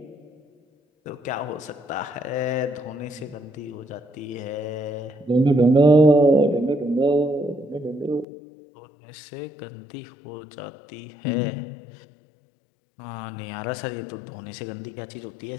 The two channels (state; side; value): drops out; right; at 8.2 s